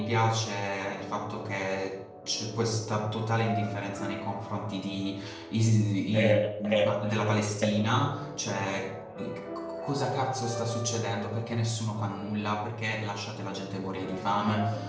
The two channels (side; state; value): both; identical; correlation 1.00